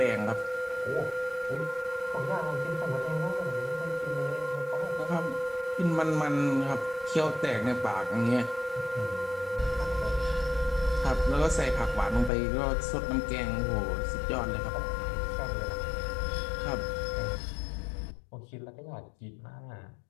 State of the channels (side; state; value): right; drops out; at 12.3 s